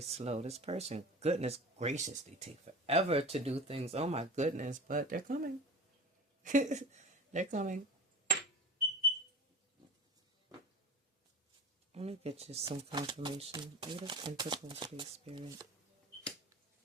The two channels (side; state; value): both; normal; correlation 0.34